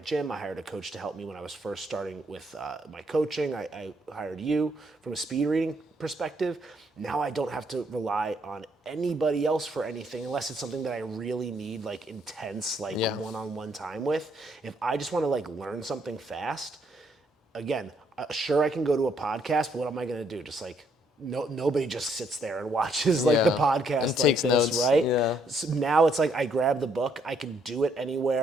gym. I hired a coach to help me when I was first starting with my coaching. I hired you from a speed reading perspective. Now I don't have to rely on anybody else for anything unless it's something that I really need like intense like one-on-one time with. If I just want to like learn something fast, again, sure I can go to a podcast, but what am I going to do? Just like nobody just sits there and watches like the Yeah. podcast And like takes this, notes. right? Yeah. So now it's like I grab the book, I can do it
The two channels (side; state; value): both; normal; correlation 0.71